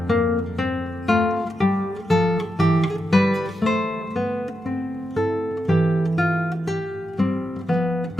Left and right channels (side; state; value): both; normal; correlation 0.87